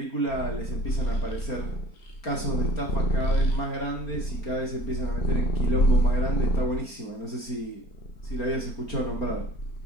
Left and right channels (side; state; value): right; late; 4.4 ms